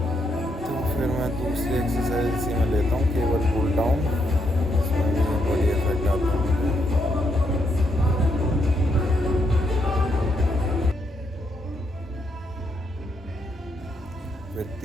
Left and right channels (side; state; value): both; normal; correlation 0.78